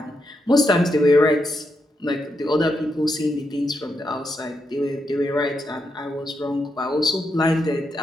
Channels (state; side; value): normal; both; correlation 0.83